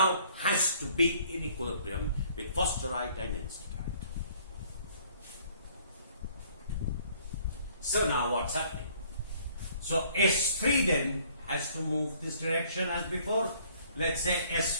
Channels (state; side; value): inverted; both; correlation -0.59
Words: has to be in equilibrium with phosphorite and enstatite. So now what's happening? So S3 then has to move this direction as before. Let's say